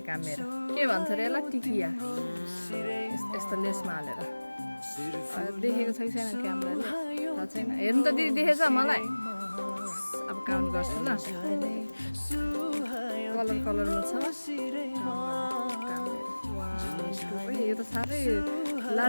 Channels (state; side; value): inverted; both; correlation -1.00